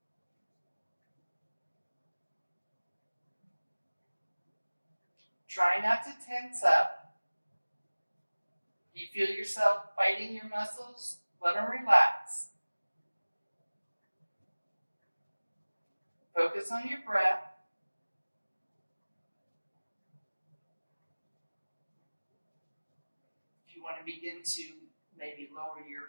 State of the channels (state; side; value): inverted; both; correlation -1.00